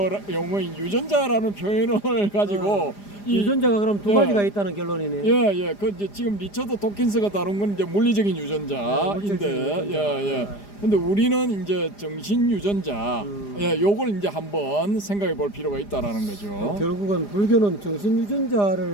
유전자라는 표현을 가지고 유전자가 그럼 두 가지가 있다는 결론이네. 예. 그 이제 지금 리처드 도킨스가 다룬 건 이제 물리적인 유전자인데, 예. 근데 우리는 이제 정신 유전자, 요걸 이제 한번 생각해 볼 필요가 있다라는 거죠. 결국은 불교는 정신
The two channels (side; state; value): right; late; 4.9 ms